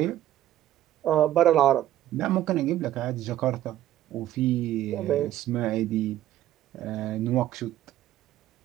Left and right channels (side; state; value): left; quieter; 13.2 dB